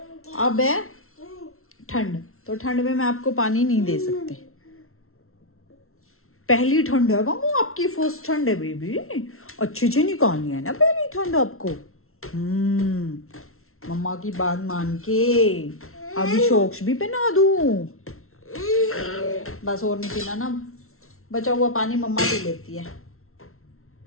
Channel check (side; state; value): right; late; 0.62 ms